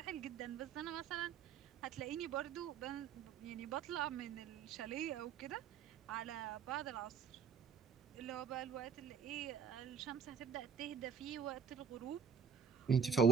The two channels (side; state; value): left; quieter; 6.8 dB